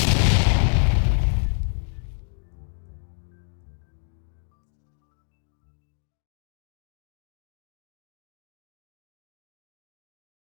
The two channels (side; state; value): right; silent; digital silence